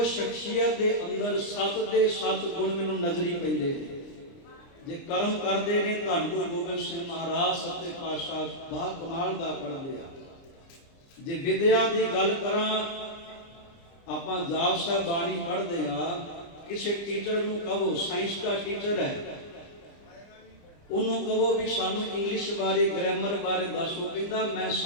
ਸ਼ਖਸੀਅਤ ਦੇ ਅੰਦਰ 7 ਦੇ 7 ਗੁਣ ਮੈਨੂੰ ਨਜ਼ਰੀ ਪੈਂਦੇ ਨੇ। ਜੇ ਕਰਮ ਕਰਦੇ ਨੇ ਧੰਨ ਗੁਰੂ ਗੋਬਿੰਦ ਸਿੰਘ ਮਹਾਰਾਜ ਸੱਚੇ ਪਾਤਸ਼ਾਹ ਬਾ ਕਮਾਲ ਦਾ ਕਰਦੇ ਆ। ਜੇ ਵਿਦਿਆ ਦੀ ਗੱਲ ਕਰਾਂ, ਆਪਾਂ ਜਾਪ ਸਾਹਿਬ ਬਾਣੀ ਪੜ੍ਹਦੇ ਆ, ਕਿਸੇ ਟੀਚਰ ਨੂੰ ਕਹੋ, ਸਾਇੰਸ ਦਾ ਟੀਚਰ ਹੈ, ਉਹਨੂੰ ਕਹੋ ਵੀ ਸਾਨੂੰ ਇੰਗਲਿਸ਼ ਬਾਰੇ, ਗ੍ਰਾਮਰ ਬਾਰੇ ਦੱਸੋ, ਕਹਿੰਦਾ ਮੈਂ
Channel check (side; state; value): right; late; 30 ms